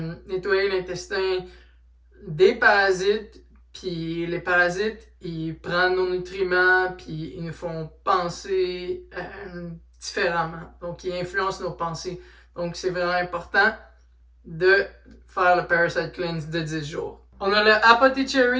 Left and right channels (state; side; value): identical; both; correlation 1.00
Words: nettoyer l'intestin des parasites. Puis les parasites, ils prennent nos nutriments, puis ils nous font penser différemment. Donc, il influence nos pensées. Donc, c'est vraiment important de faire le Parasite Cleanse de 10 jours. On a le